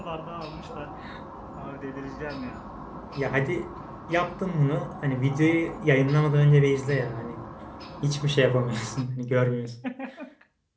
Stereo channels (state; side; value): identical; both; correlation 1.00